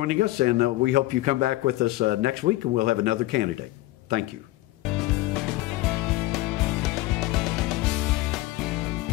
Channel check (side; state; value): right; quieter; 18.0 dB